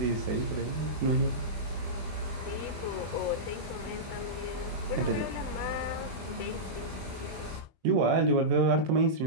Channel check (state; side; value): late; left; 21 ms